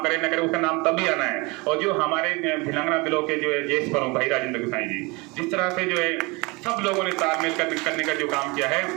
करे ना करे उसका नाम तब भी आना है, और जो हमारे भिलंगना बिलो के जो है जेस प्रमुख भाई राजेंद्र गोसाई जी, जिस तरह से जो है सब लोगों ने तालमेल करने का जो काम किया है,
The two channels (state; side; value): quieter; left; 26.2 dB